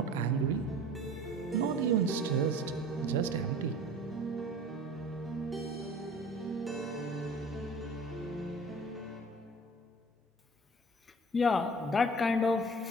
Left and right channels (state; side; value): normal; both; correlation 0.44